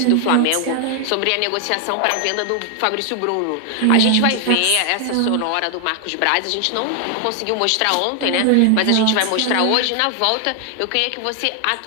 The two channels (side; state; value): both; different; correlation 0.00